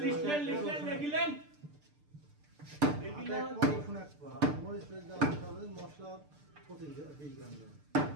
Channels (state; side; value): late; left; 6.7 ms